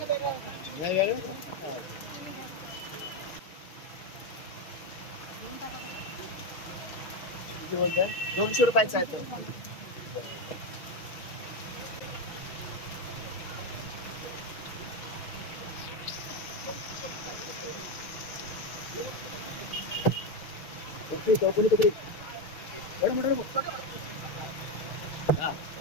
किती बोलताय? 200 रुपयाचा आहे तो. चौकनी कपडे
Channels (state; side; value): late; right; 6.3 ms